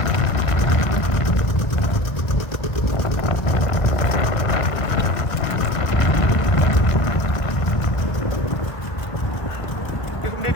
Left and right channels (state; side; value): late; right; 1.3 ms